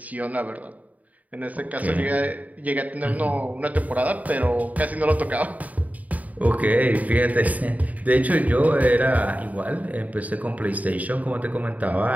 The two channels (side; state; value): left; late; 0.073 ms